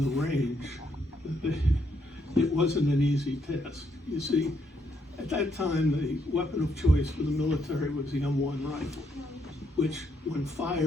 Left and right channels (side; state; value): both; normal; correlation 0.75